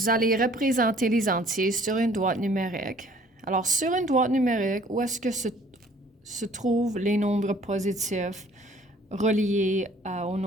allez représenter les entiers sur une droite numérique. Alors, sur une droite numérique, où est-ce que se trouvent les nombres positifs reliés au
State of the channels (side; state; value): both; normal; correlation 0.56